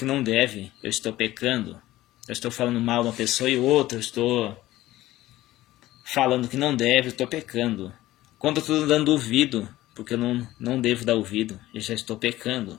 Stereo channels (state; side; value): quieter; right; 16.1 dB